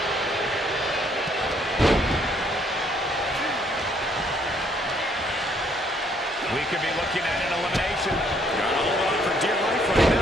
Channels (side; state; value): both; normal; correlation 0.67